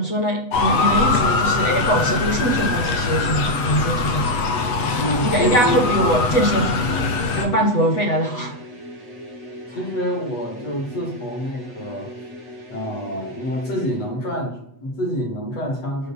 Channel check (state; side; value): late; right; 8.1 ms